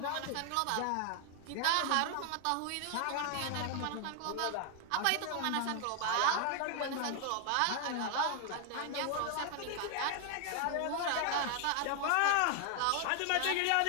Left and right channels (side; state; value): both; different; correlation 0.00